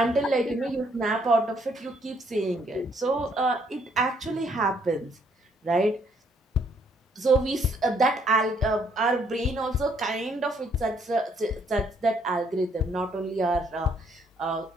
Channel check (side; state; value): both; normal; correlation 0.68